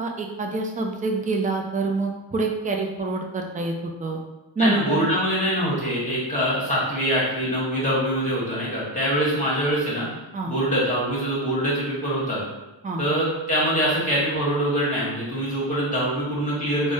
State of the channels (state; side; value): normal; both; correlation 0.18